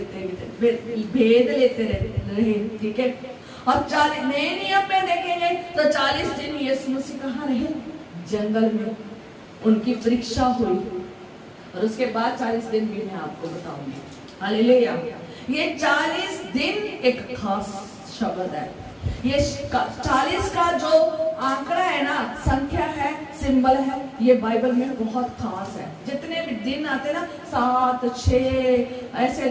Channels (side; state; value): both; identical; correlation 1.00